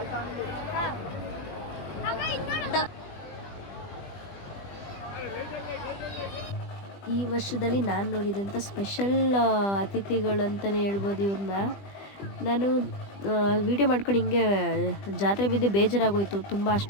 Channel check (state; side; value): late; right; 20 ms